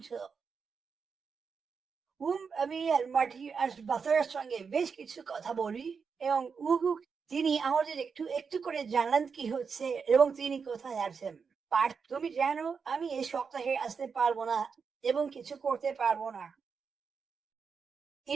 আমি আর মাটি আর বাসার সঙ্গে বেশ কিছু কথা বলি, এবং তিনি আমাদের একটু একটু করে জানান কি হচ্ছে এবং তিনি কোথায় আছেন। পার্থ, তুমি জানো আমি এই সপ্তাহে আসতে পারবো না এবং কিছু করতে পারবো না।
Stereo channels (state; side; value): quieter; left; 5.7 dB